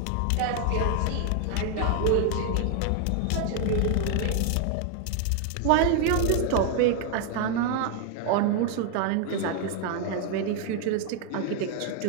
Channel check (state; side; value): different; both; correlation 0.00